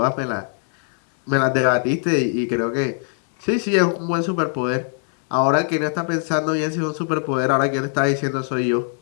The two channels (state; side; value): silent; right; 64 dB below the other